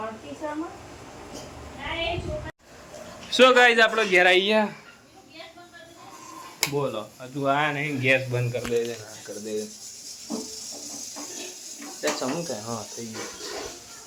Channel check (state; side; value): identical; both; correlation 1.00